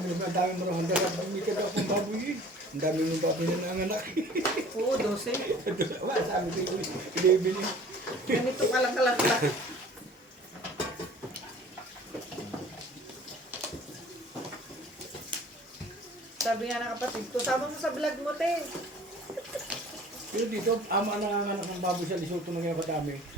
ang dami mo naman dahil bumili ka daw pang baboy eh. Ang dami mong baboy na nanganak. oo, 12. Wala, sabi ko yun, ilibili. Ganito ka lang kalakla. Sabi nga ng kapatid ko, sama mo sa vlog mo, te. Pero dito, ama na nanganak ng baboy sa Lesotho ng kaya katami.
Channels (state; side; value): normal; both; correlation 0.48